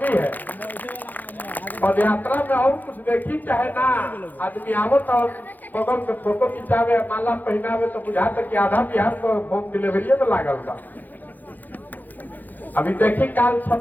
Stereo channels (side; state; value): right; late; 0.084 ms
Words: है। पद यात्रा में और कुछ देखी चाहे ना, आदमी आवत और बगल में फोटो खिंचावे, माला पहनावे, तो बुझा तक कि आधा बिहार को होम डिलीवरी में लागल बा। अभी देखी काल